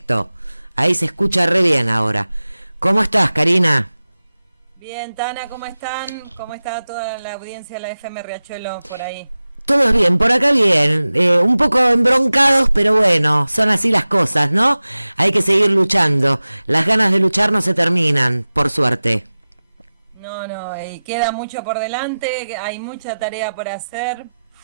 Ahí se escucha re bien ahora. ¿Cómo estás, Karina? Bien, Tana, ¿cómo están? ¿Cómo está toda la audiencia de la FM Riachuelo por ahí? Todo bien, por acá bien. Un poco embroncados, pero bueno, son así las cosas, ¿no? Hay que seguir luchando. Las ganas de luchar no se terminan, por suerte. No, no, y queda mucho por delante, hay mucha tarea por hacer.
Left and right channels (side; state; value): both; inverted; correlation -0.96